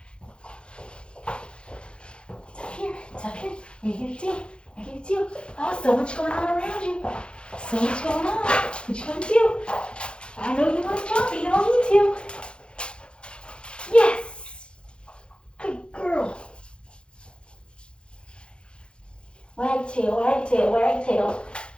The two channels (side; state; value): right; late; 0.055 ms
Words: It's up here. It's up here. I get it too. I get it too. Oh, so much going on around you. So much going on. What you gonna do? I know you want to jump, but you don't need to. Yes. Good girl. Wag tail, wag tail, wag tail.